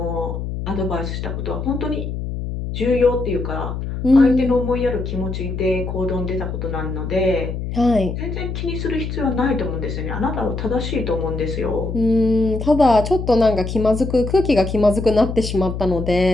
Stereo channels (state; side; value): noise; left; hum, 5 dB below the sound